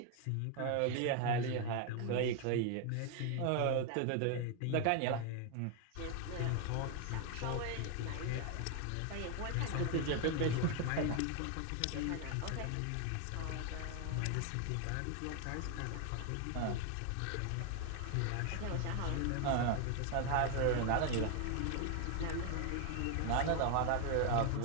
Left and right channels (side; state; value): both; different; correlation 0.01